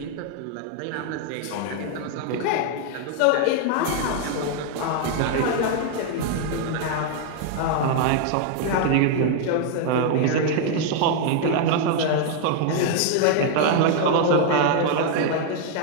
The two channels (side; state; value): both; different; correlation 0.00